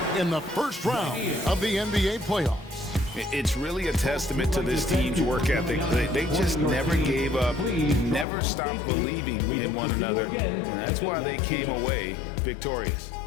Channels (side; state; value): right; drops out; at 8.2 s